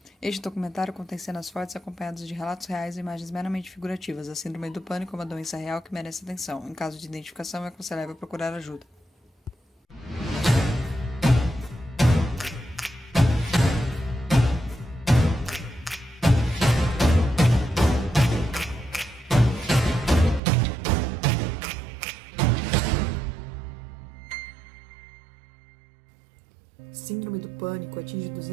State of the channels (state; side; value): drops out; left; at 20.4 s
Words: Este documentário contém cenas fortes acompanhadas de relatos reais e imagens meramente figurativas. A síndrome do pânico é uma doença real que merece atenção. Em caso de identificação, é aconselhável procurar ajuda. Síndrome do pânico atinge